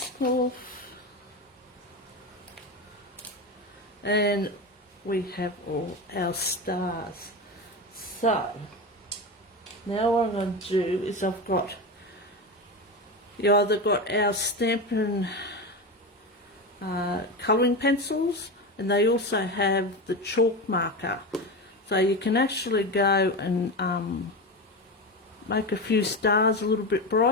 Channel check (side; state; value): both; normal; correlation 0.21